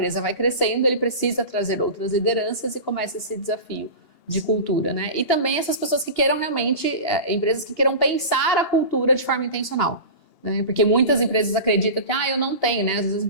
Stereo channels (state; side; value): late; right; 2.8 ms